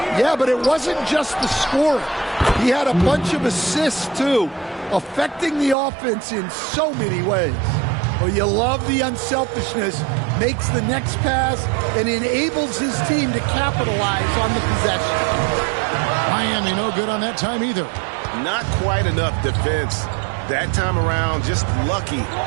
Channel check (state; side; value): drops out; left; at 5.8 s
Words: Yeah, but it wasn't just the scoring. He had a bunch of assists, too, affecting the offense in so many ways. Well, you love the unselfishness, makes the next pass, and enables his team to capitalize on the possession. Miami no good on that time either. Not quite enough defense. That time around, just lucky